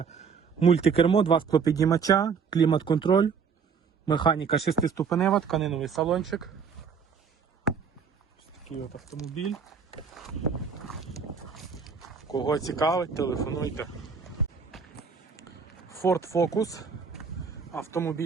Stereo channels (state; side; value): quieter; left; 6.0 dB